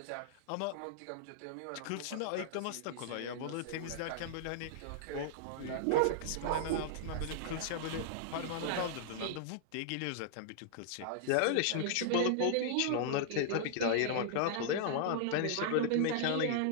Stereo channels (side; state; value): both; different; correlation -0.01